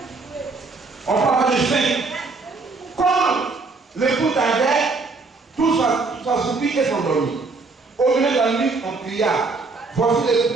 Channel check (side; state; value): left; quieter; 4.0 dB